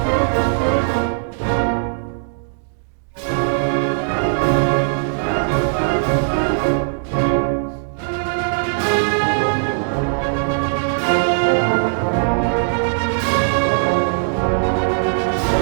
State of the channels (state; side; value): silent; left; digital silence